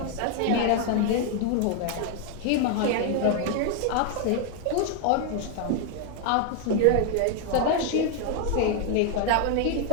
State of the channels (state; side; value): different; both; correlation 0.01